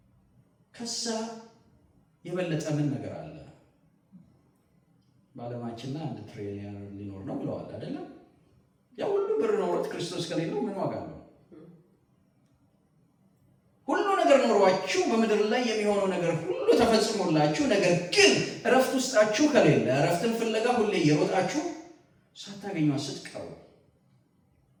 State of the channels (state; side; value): identical; both; correlation 1.00